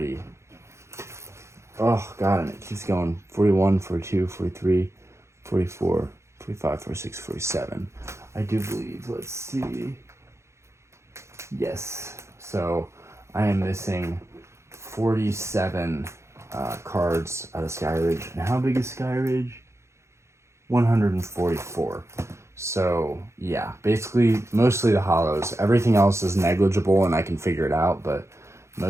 Oh god, and it keeps going. 41, 42, 43, 44, 45, 46, 47. I do believe. Let's see. Yes. So I am missing 47 cards out of Skyridge. And how big is Skyridge? 144. So yeah, basically mostly the holos. Everything else is negligible and I can figure it out, but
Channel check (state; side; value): late; left; 0.13 ms